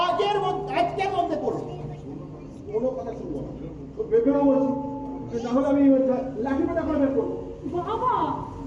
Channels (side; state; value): both; identical; correlation 1.00